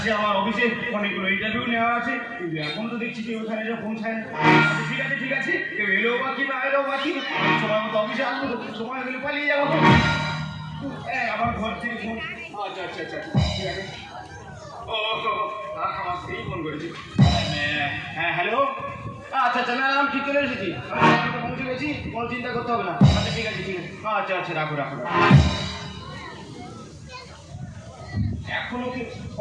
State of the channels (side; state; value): both; identical; correlation 1.00